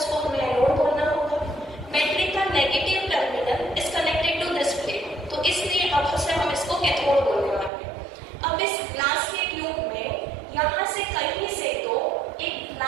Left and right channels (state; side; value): drops out; left; at 7.7 s